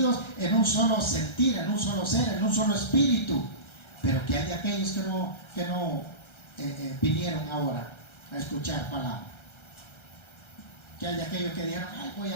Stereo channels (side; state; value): right; late; 1.3 ms